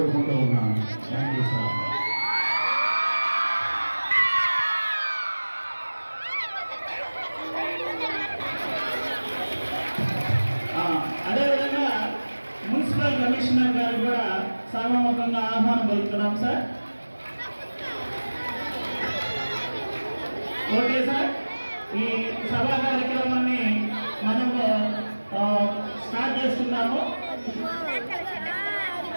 ఉన్నాను. Thank you sir. అదేవిధంగా మున్సిపల్ కమిషనర్ గారు కూడా సభాముఖంగా ఆహ్వానం పలుకుతున్నాం సార్. ఓకే సార్, ఈ సభా కార్యక్రమాన్ని మనము స్టార్ట్ చేస్తున్నాము.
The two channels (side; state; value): both; inverted; correlation -1.00